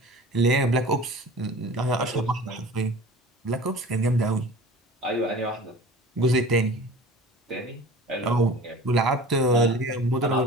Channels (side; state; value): both; normal; correlation 0.41